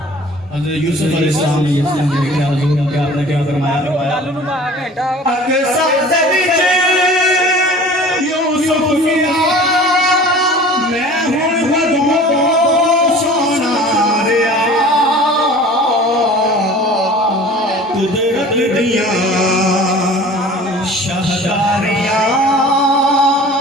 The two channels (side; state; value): both; normal; correlation 0.44